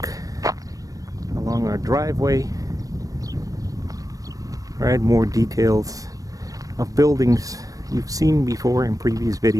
along our driveway, right, more details of buildings you've seen before in previous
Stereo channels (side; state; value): left; late; 0.17 ms